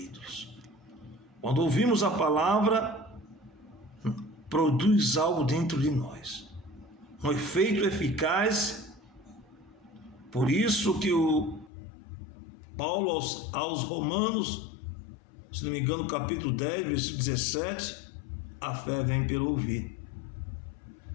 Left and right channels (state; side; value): drops out; right; at 11.7 s